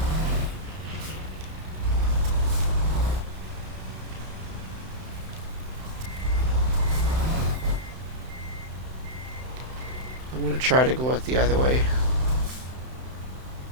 I'm going to try to go out the other way.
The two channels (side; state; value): left; late; 31 ms